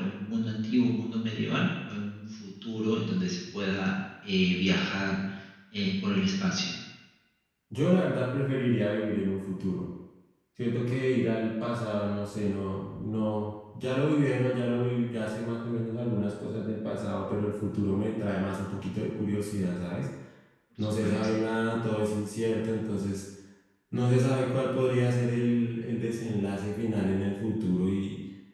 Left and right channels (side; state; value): both; identical; correlation 1.00